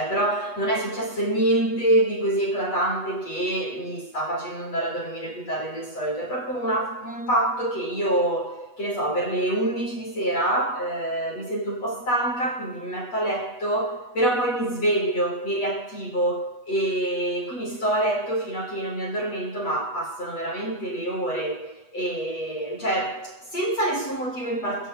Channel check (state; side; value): late; right; 8.1 ms